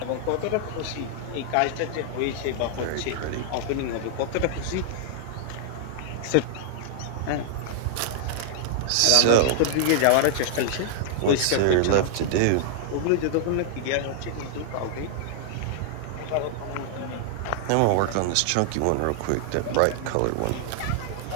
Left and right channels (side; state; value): both; different; correlation -0.01